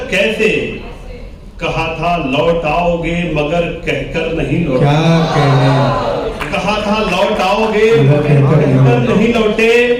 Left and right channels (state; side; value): identical; both; correlation 1.00